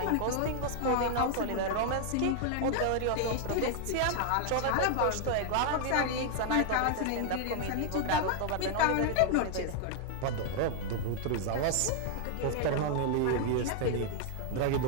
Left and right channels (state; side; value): different; both; correlation 0.00